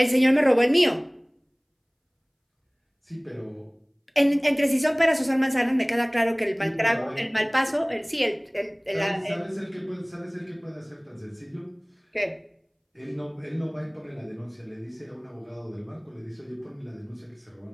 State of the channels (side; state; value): both; identical; correlation 1.00